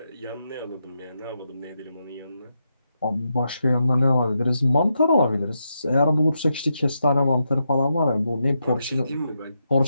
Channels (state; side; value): inverted; both; correlation -0.84